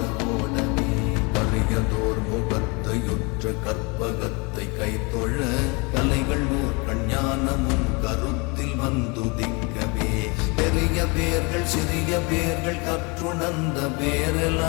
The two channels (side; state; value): right; quieter; 29.3 dB